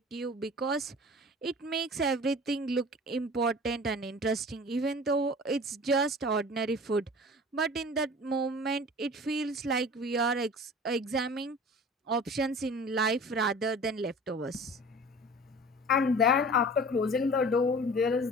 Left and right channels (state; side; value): normal; both; correlation 0.41